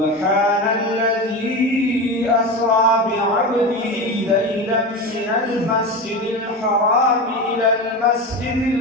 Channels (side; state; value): both; normal; correlation 0.23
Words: الذي أسرى بعبده ليلا من المسجد الحرام إلى